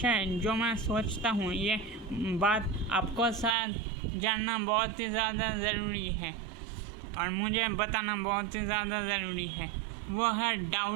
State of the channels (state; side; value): drops out; left; at 3.6 s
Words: जो मैं सोचता हूँ ये बात आपको साथ जानना बहुत ही ज़्यादा ज़रूरी है और मुझे बताना बहुत ही ज़्यादा ज़रूरी है। वो है